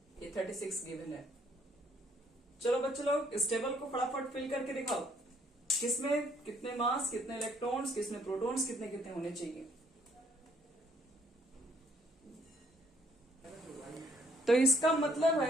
ये 36 गिवन है। चलो बच्चों लोग इस टेबल को फटाफट फिल करके दिखाओ, किसमें कितने मास, कितने इलेक्ट्रॉन्स, किसमें प्रोटॉन्स, कितने कितने होने चाहिए। तो इसका मतलब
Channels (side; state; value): both; normal; correlation 0.65